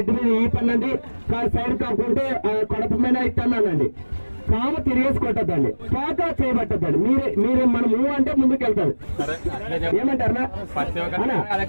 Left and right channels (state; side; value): inverted; both; correlation -1.00